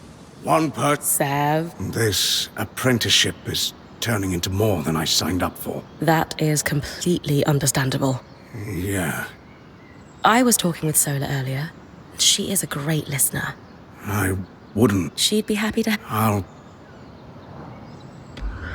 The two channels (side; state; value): both; identical; correlation 1.00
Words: One per... Sev. This apprenticeship is turning into more than I signed up for. That is completely understandable. Yeah. I was talking with Sola earlier. She is a great listener. I wouldn't... She'd be happy to... I'll...